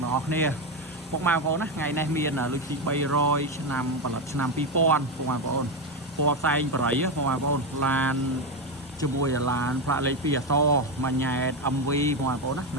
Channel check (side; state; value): both; normal; correlation 0.11